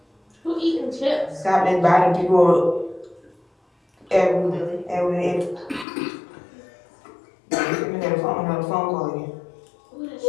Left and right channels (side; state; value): right; drops out; at 5.9 s